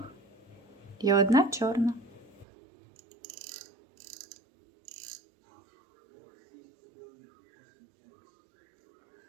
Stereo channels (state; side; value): drops out; left; at 2.5 s